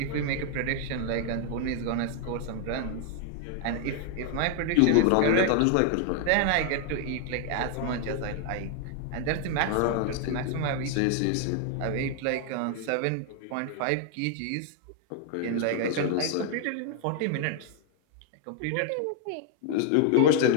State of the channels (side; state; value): both; different; correlation 0.00